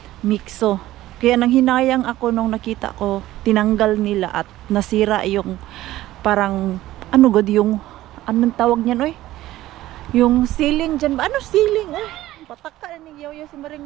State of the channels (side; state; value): left; quieter; 15.4 dB